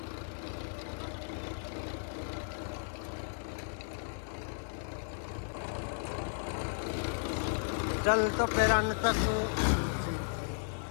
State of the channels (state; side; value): silent; right; digital silence